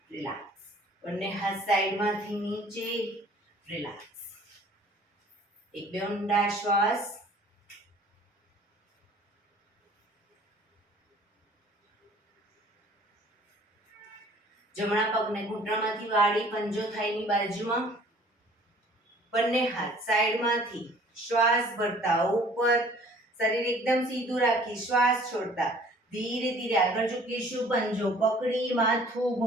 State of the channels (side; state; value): both; normal; correlation 0.53